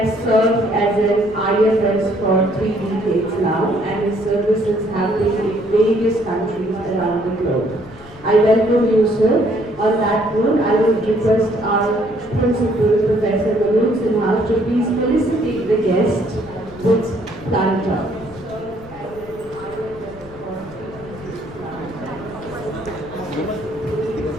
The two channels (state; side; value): noise; left; rumble, 20 dB below the sound